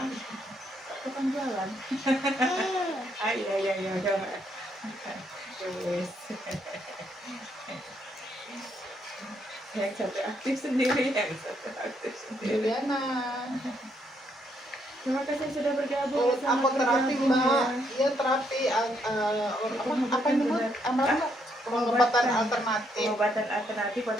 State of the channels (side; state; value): both; normal; correlation 0.74